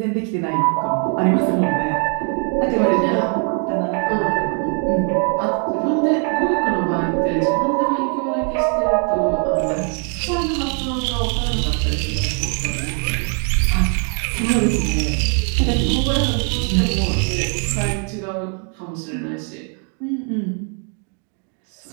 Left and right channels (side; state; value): left; quieter; 39.7 dB